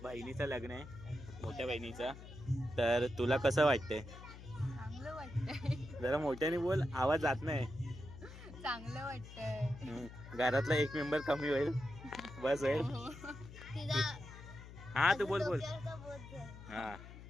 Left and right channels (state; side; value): noise; left; hum, 14 dB below the sound